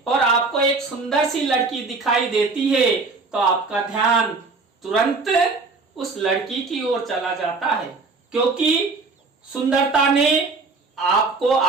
और आपको एक सुंदर सी लड़की दिखाई देती है तो आपका ध्यान तुरंत उस लड़की की ओर चला जाता है, क्योंकि सुंदरता ने आपको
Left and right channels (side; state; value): left; quieter; 4.0 dB